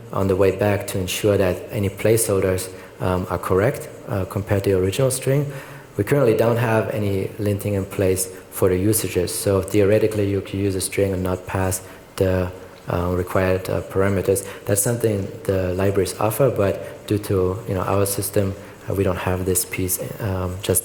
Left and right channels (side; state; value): both; identical; correlation 1.00